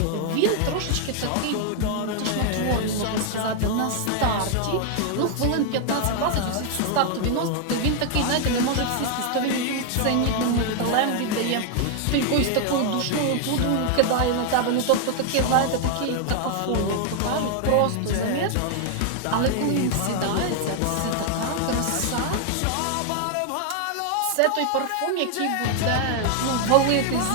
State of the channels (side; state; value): both; different; correlation 0.00